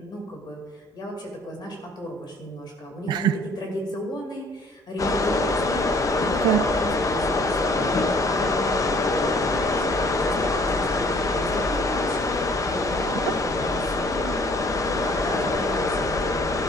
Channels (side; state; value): both; normal; correlation 0.57